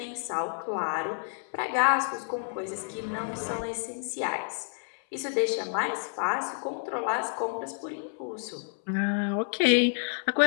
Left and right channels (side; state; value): right; silent; 58 dB below the other